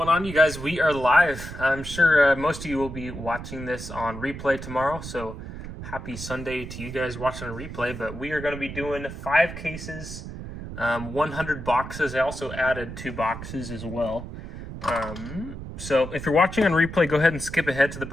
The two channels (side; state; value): right; noise; rumble, 10 dB below the sound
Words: on, you guys? We are live. I'm sure most of you will be watching this on replay tomorrow, so happy Sunday to you guys watching a replay. But we are going to be doing 5 cases, 100 boxes. I also added 2 boxes as well. So if you're watching on replay, go ahead and skip ahead to the